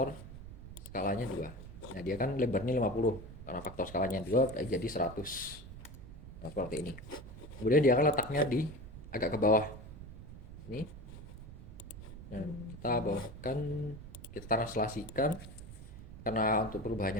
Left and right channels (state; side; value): noise; right; rumble, 13 dB below the sound